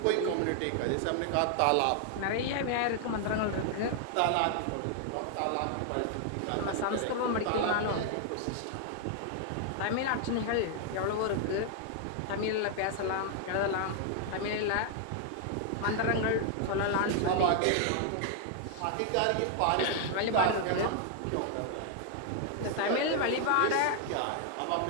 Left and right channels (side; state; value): both; different; correlation 0.00